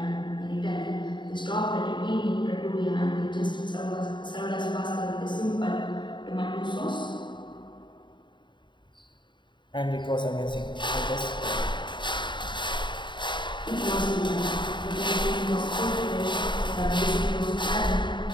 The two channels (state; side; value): late; right; 0.23 ms